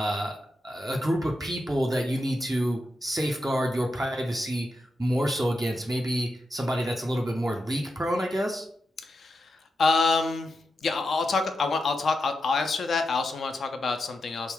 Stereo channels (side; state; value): both; normal; correlation 0.87